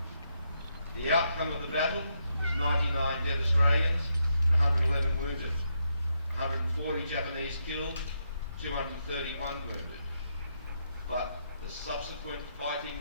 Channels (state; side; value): inverted; both; correlation -0.80